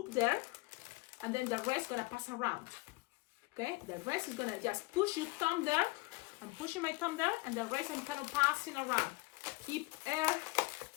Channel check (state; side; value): quieter; right; 23.8 dB